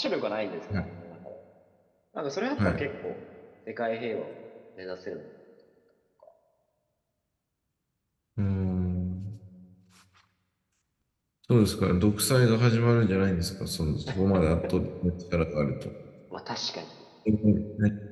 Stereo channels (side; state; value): both; identical; correlation 1.00